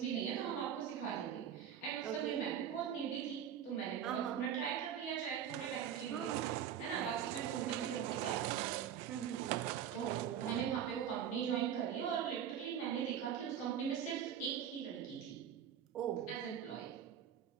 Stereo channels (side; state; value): left; quieter; 9.1 dB